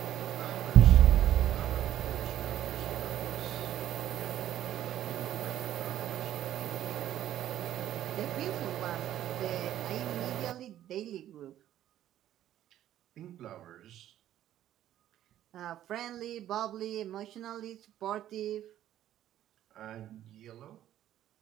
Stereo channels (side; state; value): left; quieter; 12.2 dB